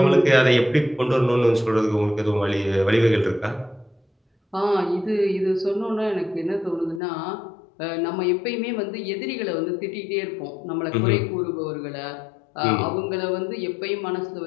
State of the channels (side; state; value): right; drops out; at 7.0 s